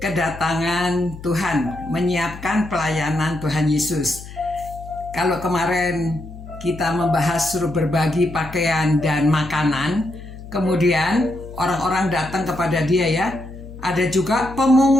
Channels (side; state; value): left; noise; hum, 14 dB below the sound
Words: Tuhan, menyiapkan pelayanan Tuhan Yesus. Kalau kemarin kita membahas suruh berbagi pakaian dan makanan, kemudian orang-orang datang kepada dia ya. Ada juga